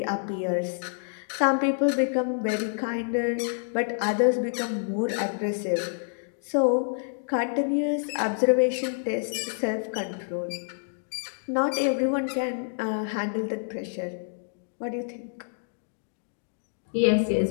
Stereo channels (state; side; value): silent; right; digital silence